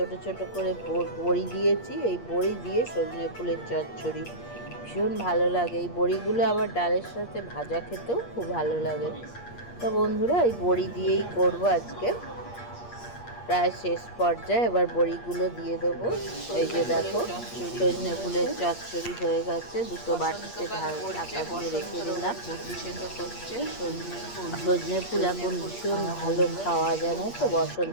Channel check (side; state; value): right; late; 8.5 ms